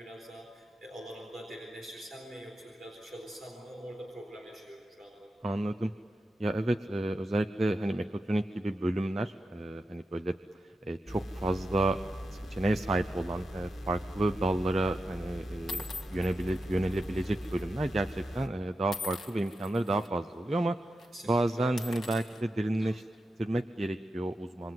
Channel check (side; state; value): both; normal; correlation 0.90